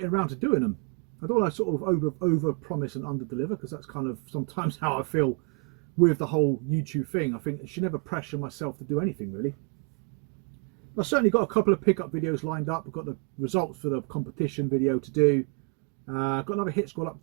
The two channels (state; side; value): quieter; left; 34.6 dB